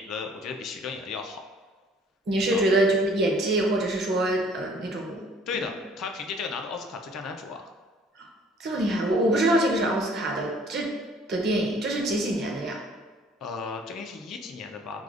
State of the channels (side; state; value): both; normal; correlation 0.56